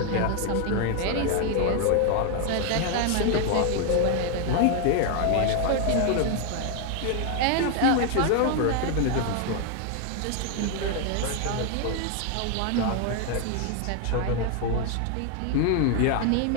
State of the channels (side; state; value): both; different; correlation 0.00